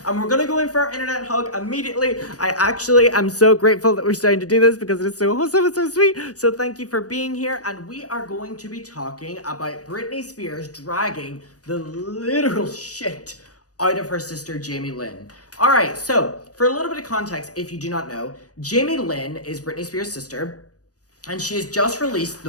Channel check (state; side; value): late; right; 0.67 ms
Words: And we're gonna go in for our internet hug immediately. I actually am so grateful that we're starting to do this because it is so awesome and so sweet. So thank you for being here, and we are going to be talking about Britney Spears dragging the literal shit out of her sister Jamie Lynn. All right, so for a little bit of context, if you do not know, Jamie Lynn is Britney Spears' sister, and she has just released